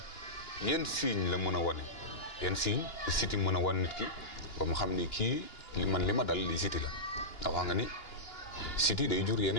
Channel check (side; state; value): right; late; 2.9 ms